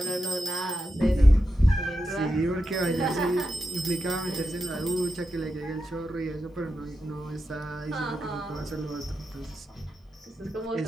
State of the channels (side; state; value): both; normal; correlation 0.89